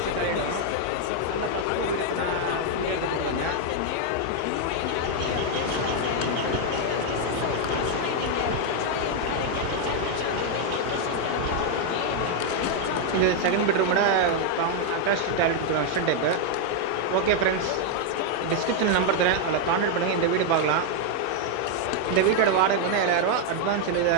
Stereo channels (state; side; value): different; both; correlation 0.00